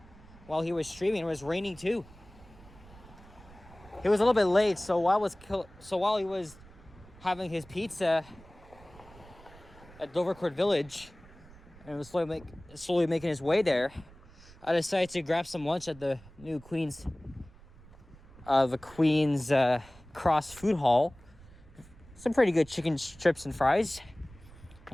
while he was streaming. It was raining too. It was a little bit late, so while he was having his pizza at Dovercourt Village and was slowly making his way there, I decided to grab some lunch at the new Queen's Cross Food Hall. Some pretty good chicken strips and fries.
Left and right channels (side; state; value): right; noise; rumble, 22 dB below the sound